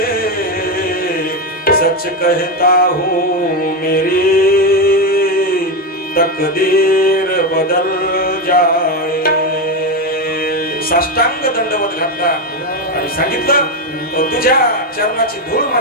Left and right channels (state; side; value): normal; both; correlation 0.11